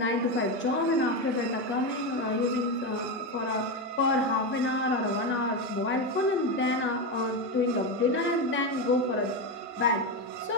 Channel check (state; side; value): normal; both; correlation 0.13